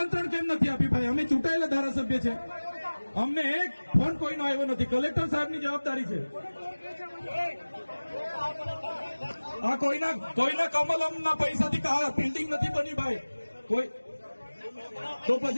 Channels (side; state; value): both; inverted; correlation -1.00